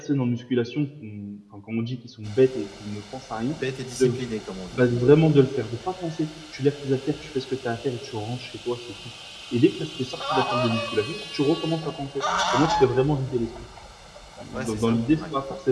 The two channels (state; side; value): identical; both; correlation 1.00